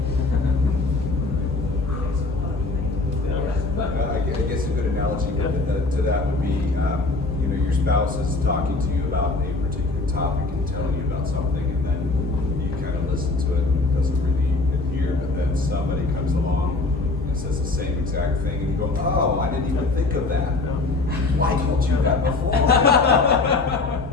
I guess a good analogy to that would be, your spouse is talking to you about a particular topic and telling you about something, and then you kind of listen to it and it doesn't really adhere, but then somebody comes along and says the same exact thing, and you go, oh, I didn't even think of that. Why told you that before?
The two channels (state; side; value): quieter; right; 3.4 dB